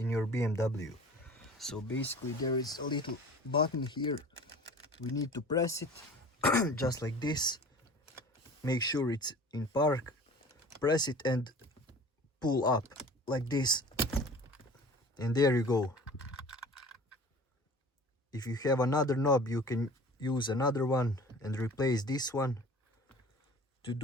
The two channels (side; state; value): both; normal; correlation 0.42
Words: your BMW. So basically there is a little button here, we need to press it just like this, make sure it's in park, press it and pull up like this, and there you go. If you have another knob you can use another one and replace this one. To